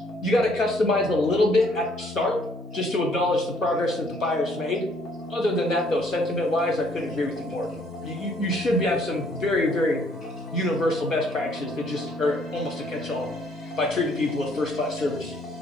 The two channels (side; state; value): both; normal; correlation 0.64